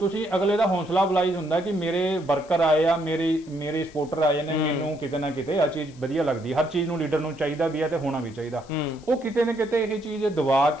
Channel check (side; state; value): left; noise; hiss, 26 dB below the sound